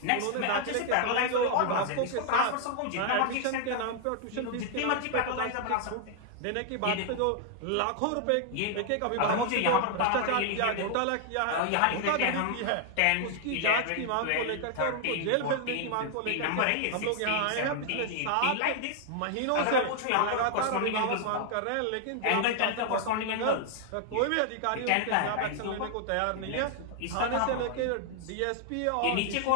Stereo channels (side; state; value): both; different; correlation 0.00